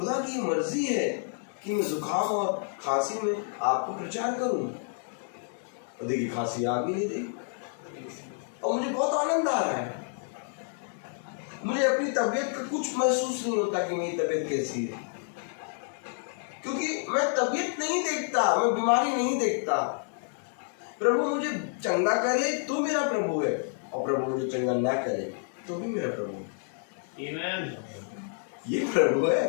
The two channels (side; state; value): right; silent; 58 dB below the other